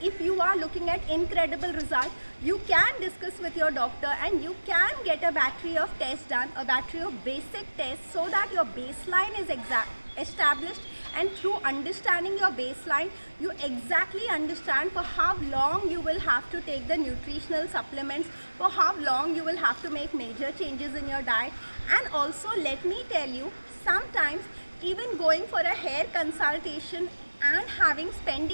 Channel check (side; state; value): both; inverted; correlation -1.00